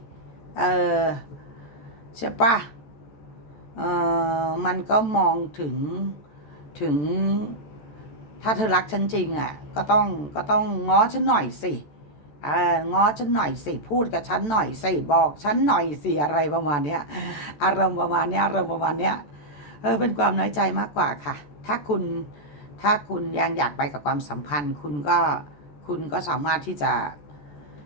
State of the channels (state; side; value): late; right; 14 ms